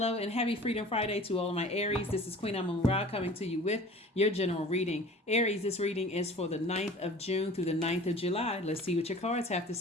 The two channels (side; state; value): both; normal; correlation 0.44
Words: happy Freedom Friday to all of my Aries. This is Queen Amun Ra coming to you with your general reading. Aries, this reading is for the 9th of June through the 9th of July. Let's see what your cards have to